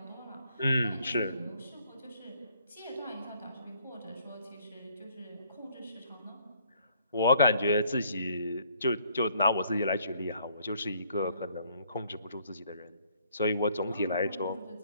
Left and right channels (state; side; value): inverted; both; correlation -0.64